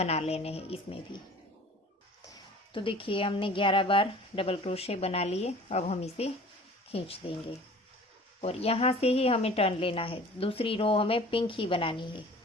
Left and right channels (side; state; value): both; normal; correlation 0.45